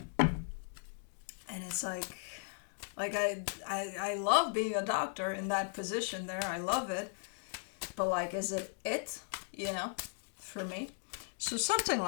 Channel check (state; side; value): silent; right; 53 dB below the other